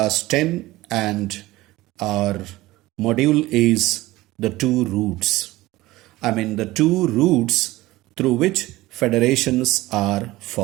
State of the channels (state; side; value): quieter; left; 18.3 dB